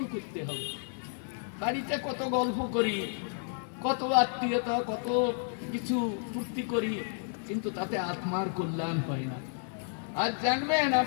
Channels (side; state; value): right; silent; 57 dB below the other